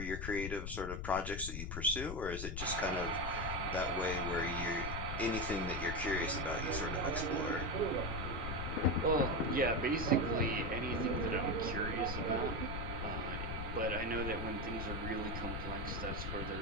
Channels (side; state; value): left; noise; rumble, 4 dB below the sound